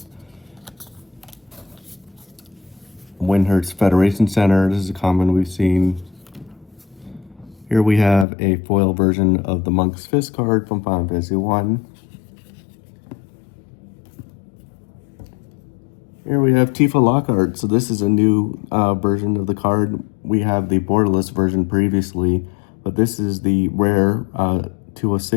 Windhurst Federation Center. This is a common we've seen. Here we have a foil version of the Monk's Fist card from Final Fantasy 1. Here we have Tifa Lockhart. So this is a new version of the card. We have the borderless version previously, but this is the rare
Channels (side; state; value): right; drops out; at 8.2 s